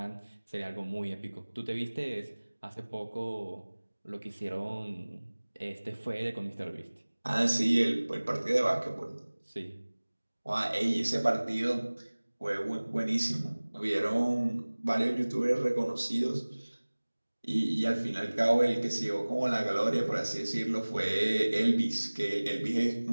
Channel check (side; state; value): both; inverted; correlation -1.00